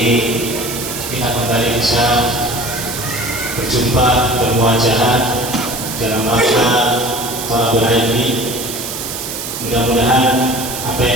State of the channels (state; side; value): noise; right; hiss, 7 dB below the sound